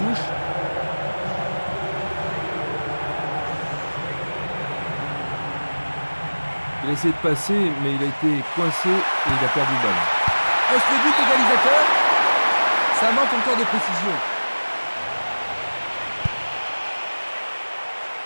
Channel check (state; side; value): inverted; both; correlation -1.00